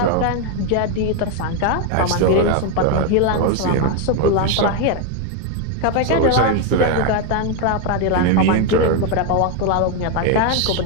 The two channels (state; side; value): different; both; correlation 0.01